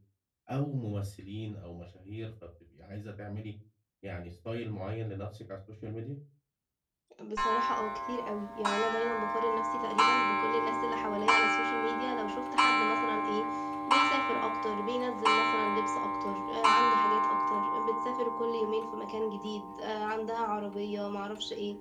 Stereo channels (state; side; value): identical; both; correlation 1.00